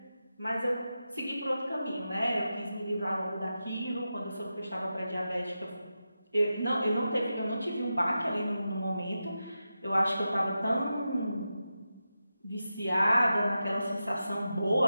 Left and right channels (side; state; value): both; inverted; correlation -0.91